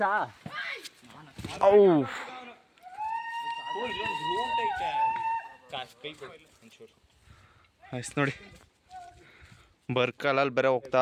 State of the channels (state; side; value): identical; both; correlation 1.00